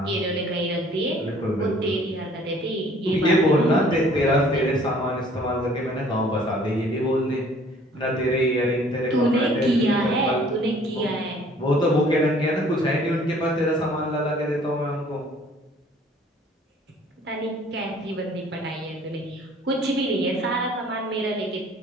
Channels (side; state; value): both; normal; correlation 0.56